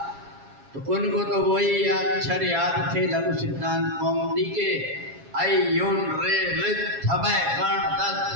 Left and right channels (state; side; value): late; left; 7.3 ms